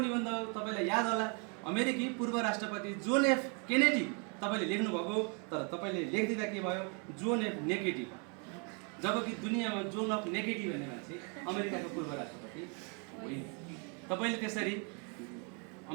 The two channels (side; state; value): left; quieter; 36.4 dB